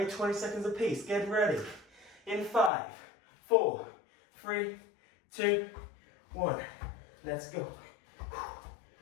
20 seconds apiece, get ready. In 5, 4, 3, 2, 1, let's go.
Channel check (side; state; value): right; drops out; at 2.7 s